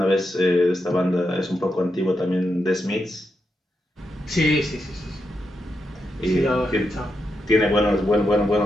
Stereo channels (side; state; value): both; normal; correlation 0.85